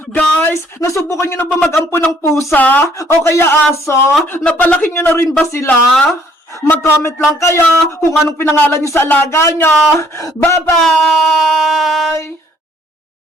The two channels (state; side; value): normal; both; correlation 0.62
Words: Guys, nasubukan nyo na ba mag-ampo ng pusa? O kaya aso? Napalaki nyo na rin ba sila? Mag-comment lang kayo kung anong pinangalan nyo sa alaga nyo. Bye-bye!